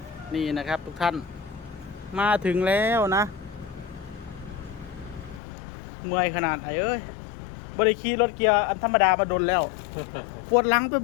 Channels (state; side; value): drops out; right; at 5.4 s